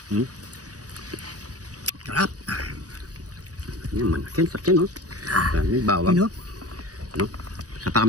Sarap. Yan man. Sakyan no? May bawang. Ano? No? Sa pa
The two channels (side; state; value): left; late; 0.67 ms